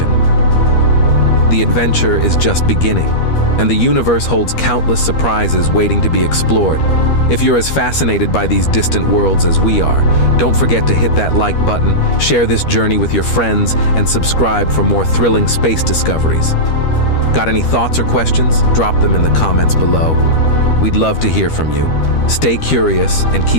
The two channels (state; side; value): late; right; 13 ms